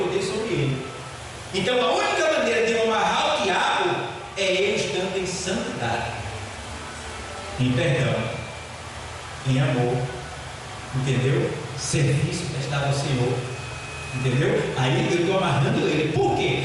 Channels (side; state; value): both; identical; correlation 1.00